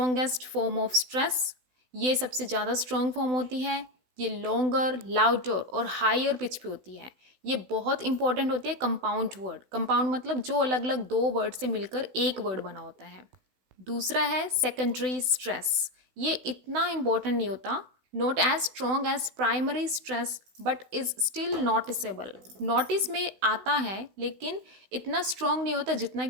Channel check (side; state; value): left; late; 16 ms